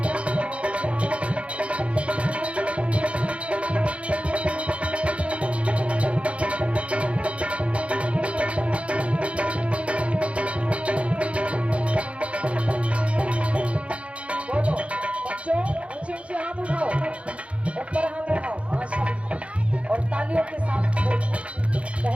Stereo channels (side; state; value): left; late; 0.062 ms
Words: बोलो बच्चों, ऊंचे ऊंचे हाथ उठाओ, ऊपर हाथ उठाओ, हाँ सब, और तालियों के साथ